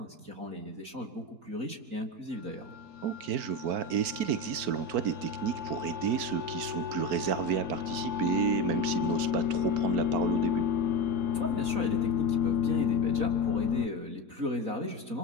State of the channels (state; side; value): late; left; 4.5 ms